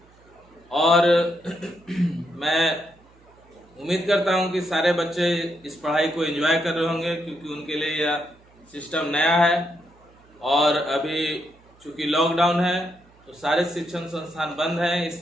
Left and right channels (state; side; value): noise; right; hum, 29 dB below the sound